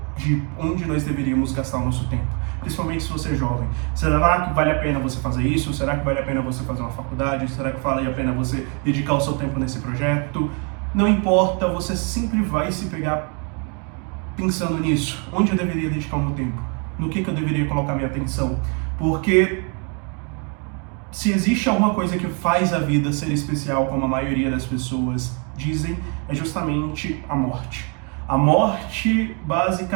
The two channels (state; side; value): quieter; left; 36.4 dB